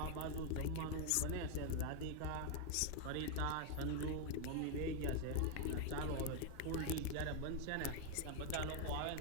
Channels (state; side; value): different; both; correlation 0.01